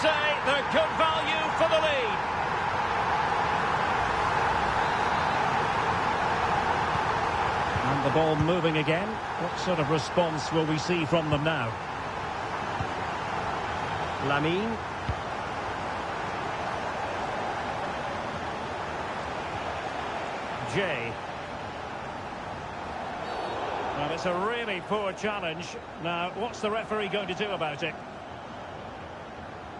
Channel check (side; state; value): both; identical; correlation 1.00